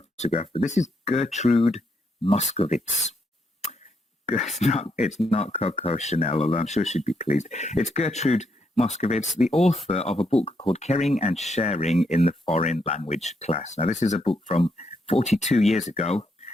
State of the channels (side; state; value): both; normal; correlation 0.78